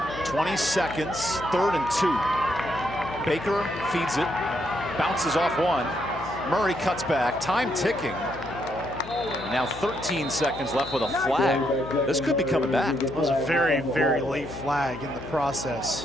"20 seconds, 3rd and 2. Baker feeds it, bounces off 1. Murray cuts back, time ticking. Now 13 seconds left with a flag. This could be coming back. It was a very, very late flag in the process.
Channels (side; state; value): left; noise; hum, 13 dB below the sound